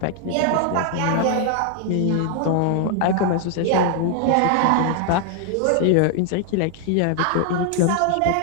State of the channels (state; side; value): different; both; correlation 0.00